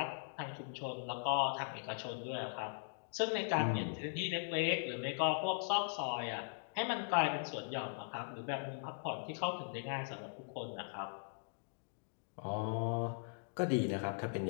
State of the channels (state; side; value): silent; right; digital silence